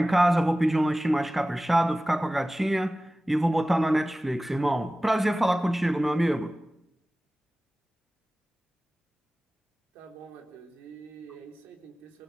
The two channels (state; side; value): normal; both; correlation 0.97